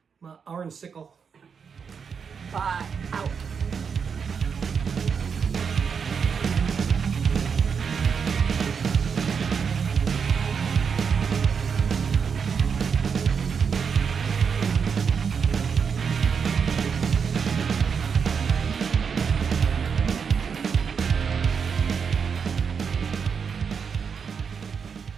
My orange sickle. Bye. Out.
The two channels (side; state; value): left; quieter; 6.3 dB